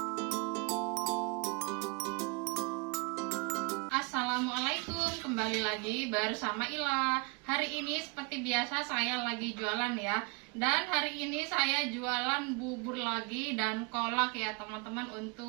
Assalamualaikum, kembali lagi bersama Ila. Hari ini seperti biasa saya lagi jualan ya. Dan hari ini saya jualan bubur lagi dan kolak ya teman-teman,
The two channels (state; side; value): quieter; left; 32.0 dB